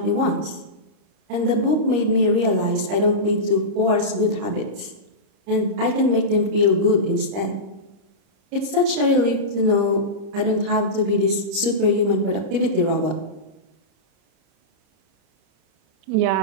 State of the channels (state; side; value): late; left; 30 ms